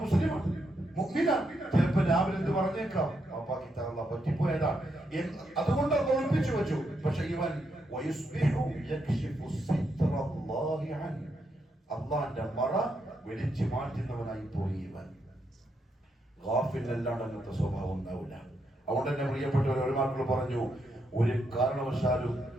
മുസ്ലിമാണ്, മുഅ്മിനാണ്. ചിലപ്പോൾ രാവിലെ എന്ത് പറഞ്ഞേക്കാം, അപ്പാക്ക് ഇത്ര പറ്റിപ്പോയതാ, അതുകൊണ്ട് അത് ഒളിപ്പിച്ചു വെച്ചു. പക്ഷെ ഇവൻ അള്ളാന്റെ മറ വെളിച്ചു മാറ്റുന്നവനായി പോയി ഇവൻ. ഗാഫിലല്ലാണ്ട് അങ്ങനത്തെ സ്വഭാവം ഉണ്ടാവില്ല. അതുകൊണ്ട് തന്നെ പ്രിയപ്പെട്ടവർ, ഒരുമാക്കൾ പറഞ്ഞു, ഒരു കാരണവശാലും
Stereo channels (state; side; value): normal; both; correlation 0.80